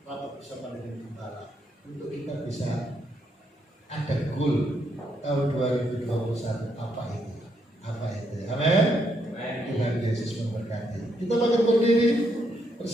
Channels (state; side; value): normal; both; correlation 0.76